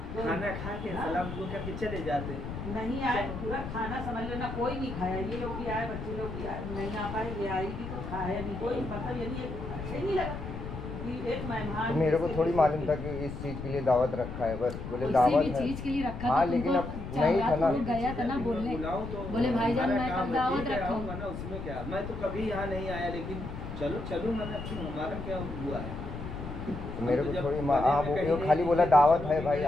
तो खाना खा के हाँ। सलाम दुआ करके चले जाते। नहीं आए पूरा खाना समझ लो ना, कोई नहीं खाया, ये लोग भी आए, बच्चे लोग भी आए, नहीं आ पाए, ये आई भी तो खाया नहीं कोई, मतलब यानी अच्छे नहीं लगा कि एक मेहमान। तो मेरे को जिसके थोड़ी बीच मालूम में- था कि इस चीज़ के लिए दावत रखा है, बस बोले किसी दावत भी है। चीज के लिए रखा हाँ, था लेकिन तुमको, अब नहीं था ना। वो गया था ना बोलने, बुलाओ तो बोले भाईजान हमारा मैं काम कल है, दावत ठीक है, रखा आऊंगा हूँ। ना, उसमें क्या, मैं तो कभी यहाँ नहीं आया, लेकिन चलो चलूँ मैंने, क्यों, हमारा क्या हुआ है। तो मेरे हम को तो जब थोड़ी बने हाँ, में वो कहीं ये नहीं खाली बोला दिखे तो दावत चलो है भाई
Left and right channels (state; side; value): noise; left; rumble, 8 dB below the sound